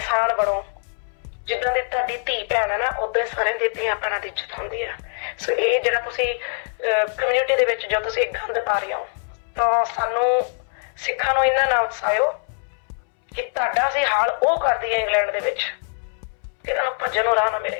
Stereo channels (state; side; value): silent; right; 63 dB below the other